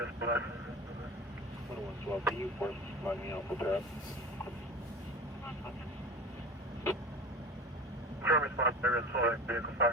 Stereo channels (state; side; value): normal; both; correlation 0.35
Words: black. 112, can you force line me out for that? Current response, area's full, vehicle